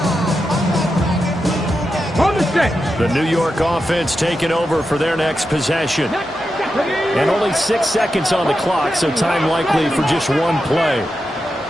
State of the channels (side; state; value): both; normal; correlation 0.89